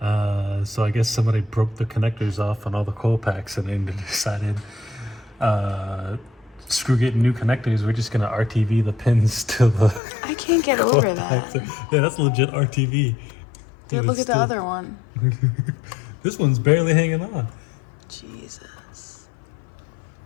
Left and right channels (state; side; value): drops out; right; at 10.0 s